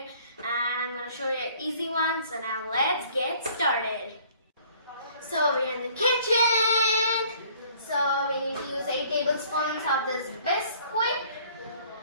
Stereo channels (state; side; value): inverted; both; correlation -0.56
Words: And I'm going to show you easy ones. So now let's get started. So we're in the kitchen. So we need to use 8 tablespoons of this Bisquick